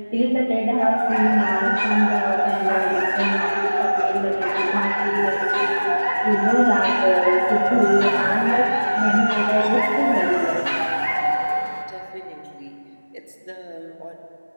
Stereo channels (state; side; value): inverted; both; correlation -1.00